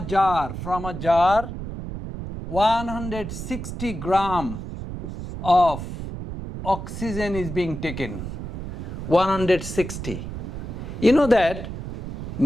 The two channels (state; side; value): noise; right; rumble, 7 dB below the sound